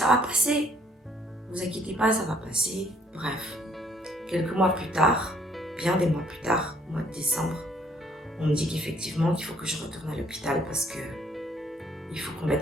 va passer. Ne vous inquiétez pas, ça va passer. Bref, quelques mois plus tard, bien des mois plus tard, au mois de décembre, on me dit qu'effectivement, qu'il faut que je retourne à l'hôpital parce que il faut qu'on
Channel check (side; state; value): both; normal; correlation 0.63